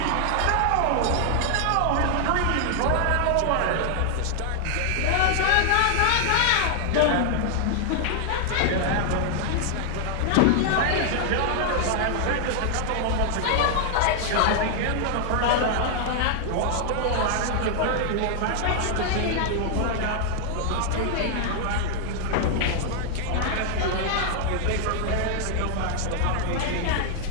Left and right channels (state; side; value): different; both; correlation 0.00